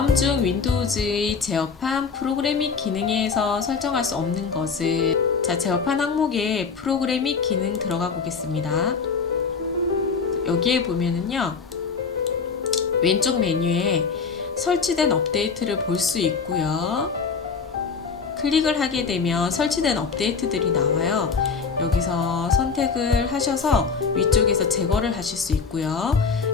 중 윈도우즈의 제어판 프로그램 및 기능에서 설정할 수 없는 것은, 자, 제어판 항목에 프로그램 및 기능 들어가 보겠습니다. 여기에 보면은요, 왼쪽 메뉴에 설치된 업데이트를 볼 수 있고요. 클릭을 하게 되면 설치된 업데이트들이 나와요. 여기서 선택을 하셔서 위쪽에서 제거를 하실 수 있고요.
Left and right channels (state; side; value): quieter; right; 5.3 dB